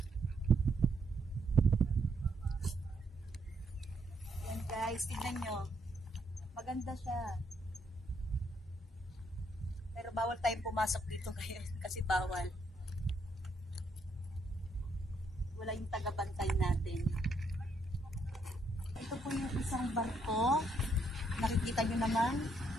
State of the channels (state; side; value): normal; both; correlation 0.74